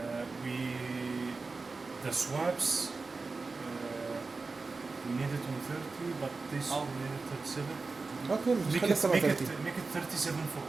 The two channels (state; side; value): quieter; left; 4.0 dB